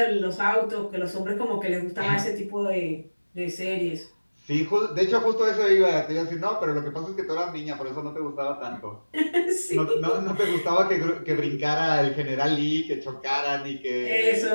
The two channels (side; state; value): both; inverted; correlation -1.00